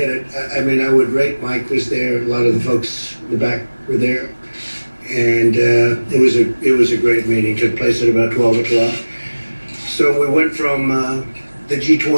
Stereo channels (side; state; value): both; inverted; correlation -1.00